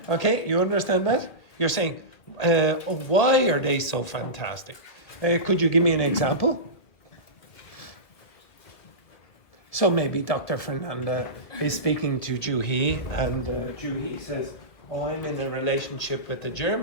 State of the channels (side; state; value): right; late; 1.8 ms